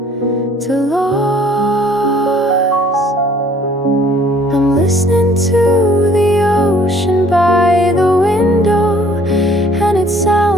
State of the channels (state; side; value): normal; both; correlation 0.58